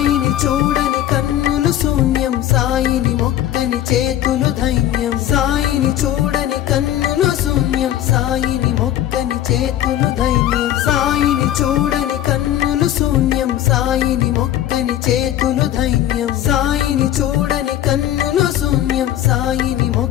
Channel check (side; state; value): right; quieter; 12.3 dB